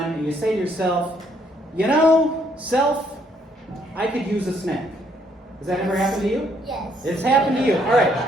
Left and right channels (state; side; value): normal; both; correlation 0.69